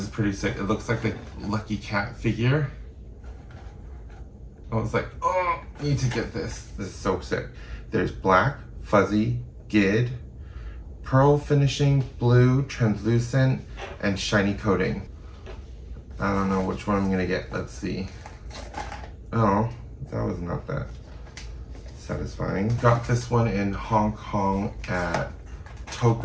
is pretty sick. It looks like the Lucky Cat figure. I was like, oh, need to get this. This is so sick. There's black, fuzzy, gid, pearl finishing, blue, translucent, and shiny coating. I don't know which one I'm gonna get. Let's see. Oh, that was not that satisfying. Got this one in Hong Kong at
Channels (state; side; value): identical; both; correlation 1.00